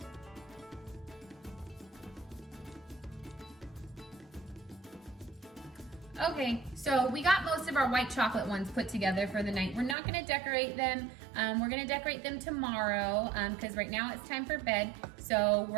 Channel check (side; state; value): left; drops out; at 10.0 s